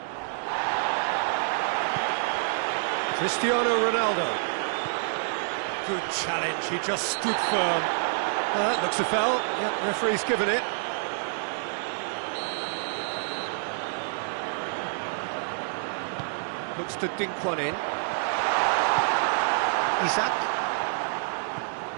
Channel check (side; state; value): left; silent; digital silence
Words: Cristiano Ronaldo. Good challenge, he just stood firm. That looks a foul. Yep, referee's given it. Looks to dink one in. Isak.